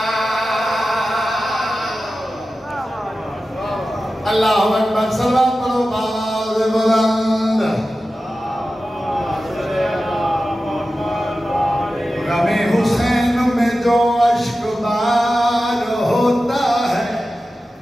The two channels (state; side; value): normal; both; correlation 0.94